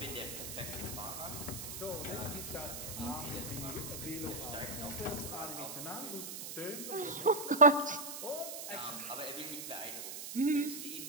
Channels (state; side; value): noise; right; hiss, 7 dB below the sound